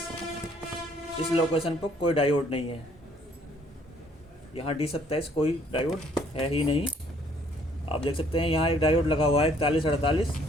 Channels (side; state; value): both; normal; correlation 0.63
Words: इस लोकेशन पर कोई डायोड नहीं है। यहाँ D27 कोई डायोड है ही नहीं। आप देख सकते हैं यहाँ एक डायोड लगा हुआ है 4148,